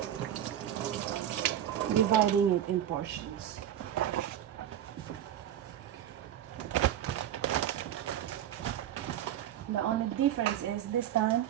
dividing it in portions. The only difference is this time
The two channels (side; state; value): left; quieter; 11.0 dB